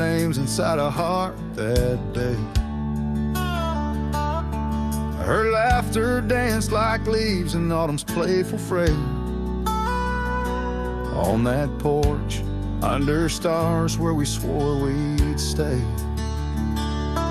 inside a heart that day. Her laughter danced like leaves in autumn's playful fray. On that porch, under stars where we swore we'd stay.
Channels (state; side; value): identical; both; correlation 1.00